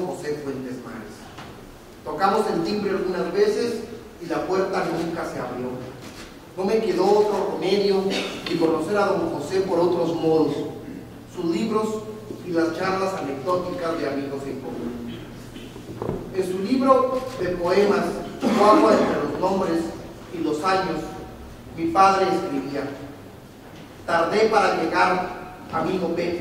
José Fuentes Mares. Tocamos el timbre algunas veces y la puerta nunca se abrió. No me quedó otro remedio que conocer a don José por otros modos, sus libros y las charlas anecdóticas de amigos en común. En su libro de poemas, Chihuahua entre los nombres y los años, mi padre escribía: tardé para llegar, amigo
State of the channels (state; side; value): identical; both; correlation 1.00